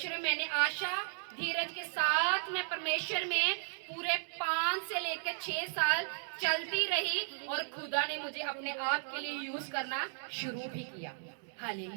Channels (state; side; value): silent; left; digital silence